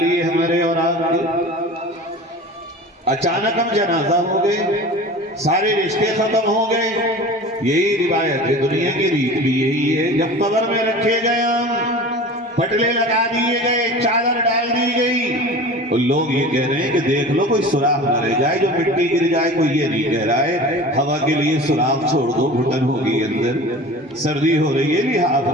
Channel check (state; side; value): normal; both; correlation 0.37